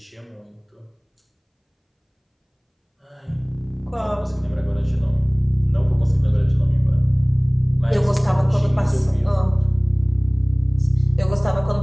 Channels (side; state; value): both; identical; correlation 1.00